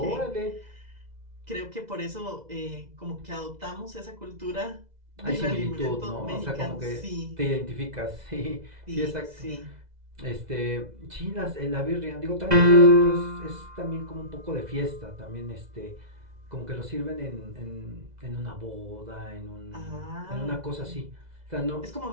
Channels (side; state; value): left; late; 2.0 ms